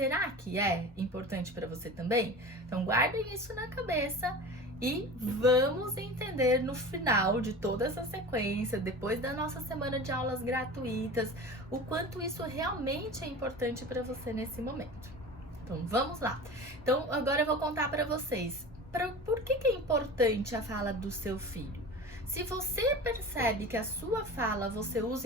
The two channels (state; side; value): normal; both; correlation 0.34